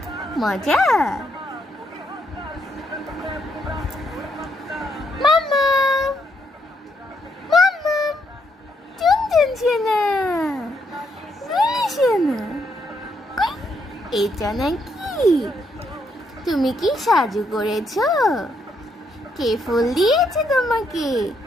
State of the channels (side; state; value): both; normal; correlation 0.76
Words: মজা। মাম্মা, মাম্মা, টুনটুন সোনা, গুলি সোনা, এটা নাকি? তুমি কি সাজু করেছো? কে ফুল দিয়েছে তোমাকে?